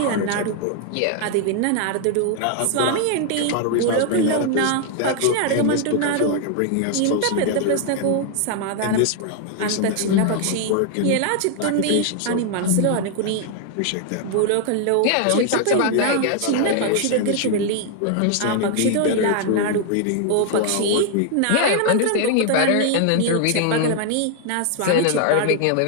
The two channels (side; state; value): both; different; correlation 0.00